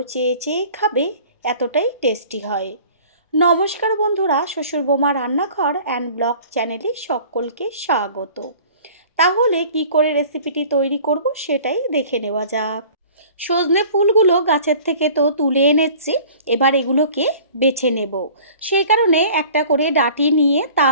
চেয়ে চেয়ে খাবে, এতটাই টেস্টি হয়। নমস্কার বন্ধুরা, শ্বশুর বোমা রান্নাঘর অ্যান্ড ব্লগ চ্যানেলে সকলকে স্বাগত। তাহলে কি করে রেসিপিটি তৈরি করব সেটাই দেখে নেওয়া যাক। সজনে ফুলগুলো গাছের থেকে তো তুলে এনেছি, এবার এগুলোকে বেছে নেব। সেই কারণে একটা করে ডাঁটি নিয়ে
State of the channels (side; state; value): both; inverted; correlation -0.47